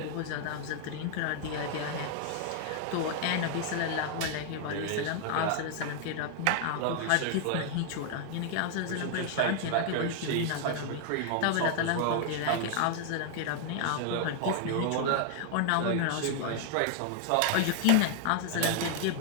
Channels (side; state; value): both; different; correlation 0.00